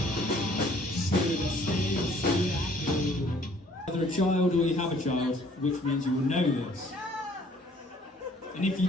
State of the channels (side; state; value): both; normal; correlation 0.58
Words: Either a child or you have a child, which means you will know this. And if you